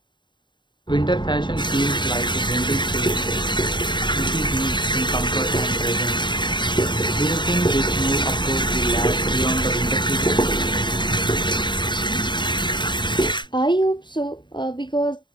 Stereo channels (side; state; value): right; late; 0.22 ms